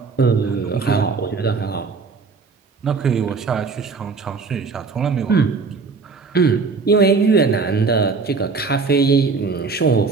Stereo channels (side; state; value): left; quieter; 4.6 dB